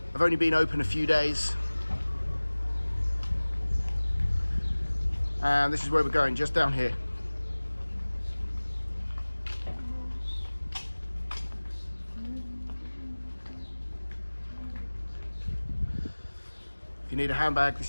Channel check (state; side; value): inverted; both; correlation -1.00